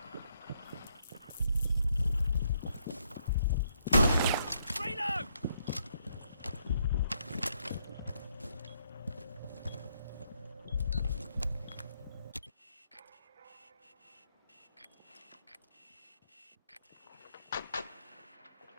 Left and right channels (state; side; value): inverted; both; correlation -0.74